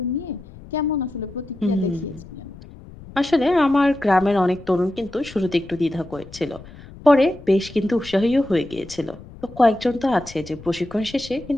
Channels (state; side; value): noise; left; rumble, 18 dB below the sound